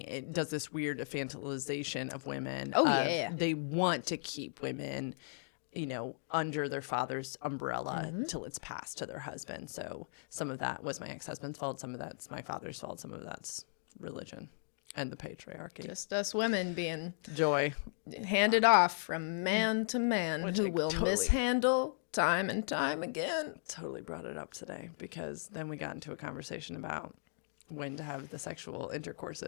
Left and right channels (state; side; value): silent; right; digital silence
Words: it does this weird infantilization of women. They want to keep women, under their father's umbrella till it's passed to their husband. So some of that was my ex-husband's fault. Some of that's my father's fault. Some of that's religion and the patriarchy. Just us women being joy handed off from man to man, which who I will totally mishandle time and time again. Totally brought it up today because then we got into a conversation about when to have the sexual